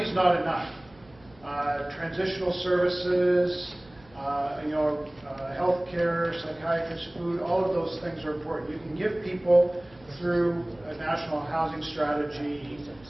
not enough. Transitional services, healthcare, psychiatrists, food, all of those things are important. You can give people through a national housing strategy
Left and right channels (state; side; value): noise; right; hum, 26 dB below the sound